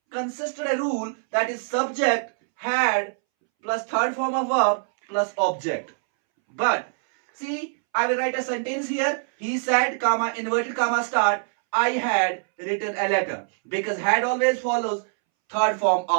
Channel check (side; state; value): left; silent; 63 dB below the other